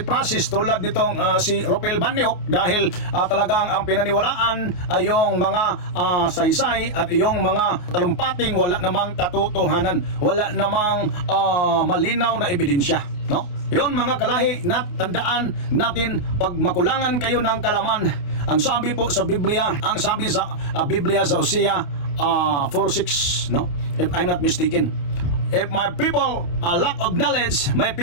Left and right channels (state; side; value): late; right; 28 ms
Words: process tulad nitong si Ropel Banyok, dahil talagang ang pinaniwalaan ay yung mga saysay at yung mga talumpating wala namang katotohanan, wala namang malinaw na ebidensya, no? Yon mga kalahi, tandaan natin, pag makulangan kayo ng kalaman, ang sabi po sa Biblia, ang sabi sa Biblia sa Hosea 4:6, no? If I'm not mistaken, if my people lack of knowledge, my